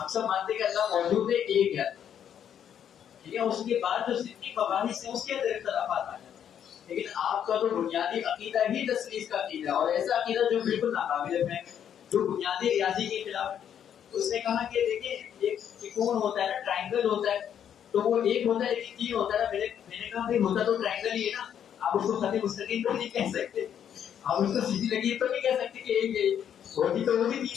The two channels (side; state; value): right; quieter; 9.1 dB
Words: سب مانتے ہیں کہ اللہ موجود ہے، ایک ہے. ٹھیک ہے، اس کے بعد جو جتنی مباحث ہیں اس کے اندر اختلافات آ جاتے ہیں. لیکن آپ کا تو بنیادی عقیدہ ہی تثلیث کا عقیدہ ہے، اور ایسا عقیدہ جو بالکل ناقابل فہم، جو بنیادی ریاضی کے خلاف ہے. اس نے کہا کہ دیکھیں ایک ترکون ہوتا ہے نا، ٹرائنگل ہوتا ہے، تو وہ ایک ہوتا ہے لیکن 3 ہوتا ہے نا. میں نے کہا بھائی ہوتا تو ٹرائنگل ہی ہے نا، آپ اس کو خط مستقیم تو نہیں کہہ سکتے، آپ اس کو سیدھی لکیر تو نہیں کہہ سکتے کہ ایک ہوتی تو وہ بھی